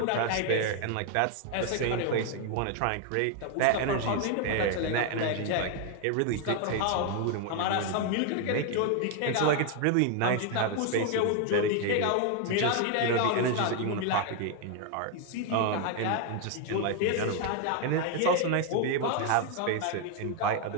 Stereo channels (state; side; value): different; both; correlation 0.00